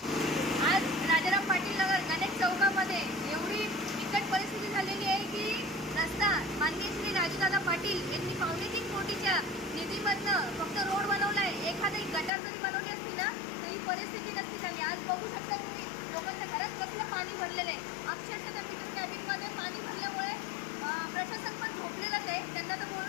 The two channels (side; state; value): right; drops out; at 12.3 s